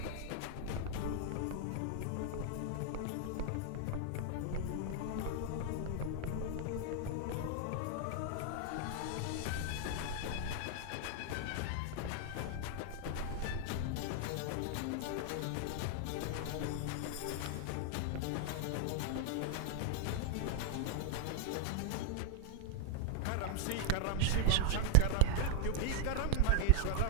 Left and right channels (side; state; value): both; different; correlation 0.00